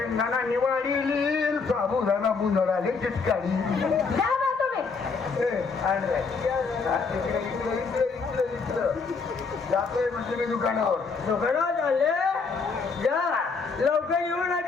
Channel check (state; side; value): quieter; right; 4.8 dB